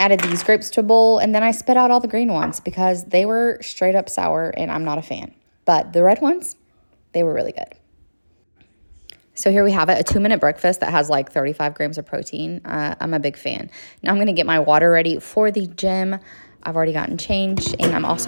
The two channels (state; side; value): inverted; both; correlation -1.00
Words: these grapes to a bowl, and then I spit out all the green ones because they were straight up sour, and I'm not a fan. But the red ones, they were really good. So here we have it, a 2-minute breakfast that has like 35 grams of protein. I'm a big fan. Now I'm going to get my water ready for the gym. I've already gotten changed, and I'm